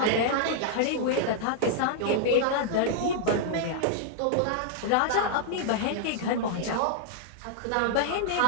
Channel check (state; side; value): different; both; correlation -0.01